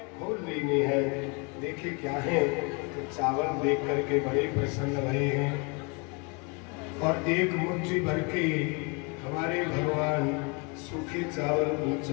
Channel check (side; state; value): right; quieter; 31.5 dB